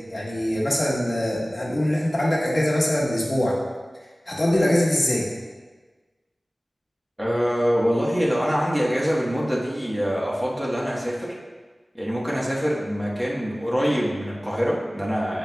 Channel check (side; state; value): both; normal; correlation 0.98